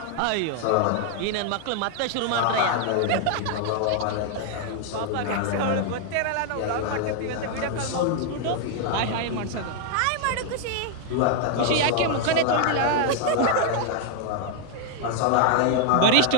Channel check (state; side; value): different; both; correlation 0.00